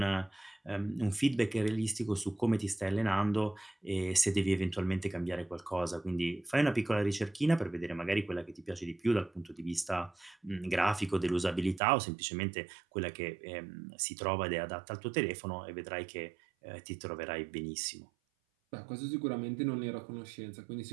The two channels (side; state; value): left; drops out; at 11.8 s